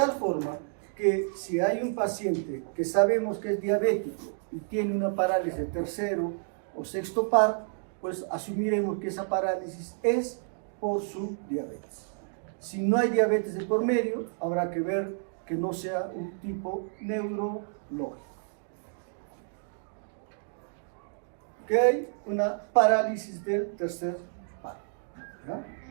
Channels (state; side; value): silent; left; digital silence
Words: forma que si hay un paciente que sabemos que es diabético y tiene una parálisis de tercero o sexto par, pues asumiremos que esa parálisis es por su diabetes. Si no hay diabetes de por medio, habrá que ver que no sea un tipo neurológico. Que hay una parálisis del tercer par, ¿ya?